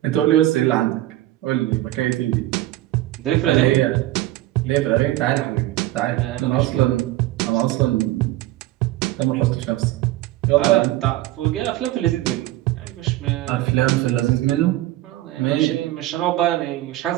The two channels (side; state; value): left; quieter; 15.8 dB